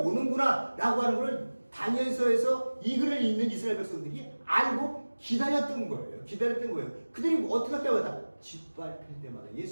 라고 하는 걸 다니엘서에서 이 글을 읽는 이스라엘 백성들이 알고 기다렸던 거예요. 그들이 어떻게 할 때마다 짓밟힐 때마다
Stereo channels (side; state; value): both; inverted; correlation -1.00